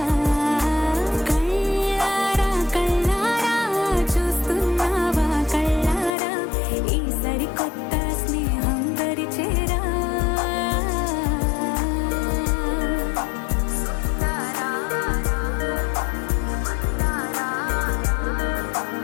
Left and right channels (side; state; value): right; drops out; at 6.1 s